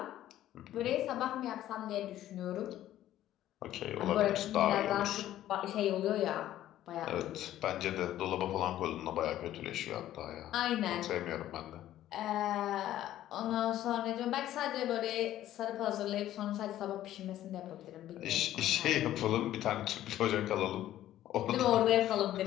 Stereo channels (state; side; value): quieter; right; 13.0 dB